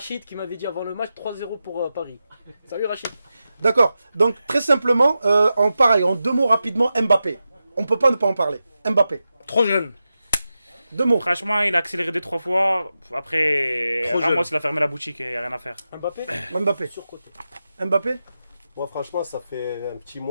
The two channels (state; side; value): inverted; both; correlation -0.91